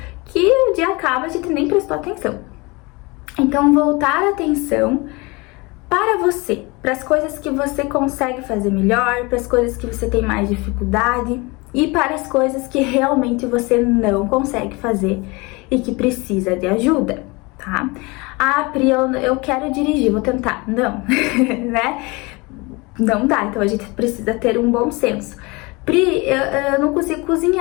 que o dia acaba e a gente nem prestou atenção. Então, voltar a atenção para você, para as coisas que você consegue fazer melhor, para as coisas que você tem mais dificuldade e para as coisas que realmente você não consegue fazer e que precisa de ajuda, tá? Ah, Pri, eu quero dirigir, vou tentar. Não, Não dá, então a gente precisa ter um bom senso. Pri, eu não consigo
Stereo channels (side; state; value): right; quieter; 25.8 dB